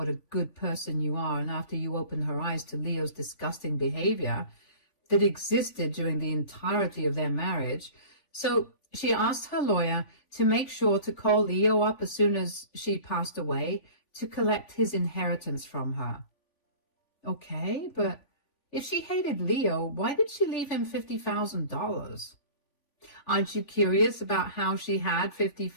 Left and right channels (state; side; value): late; right; 3.5 ms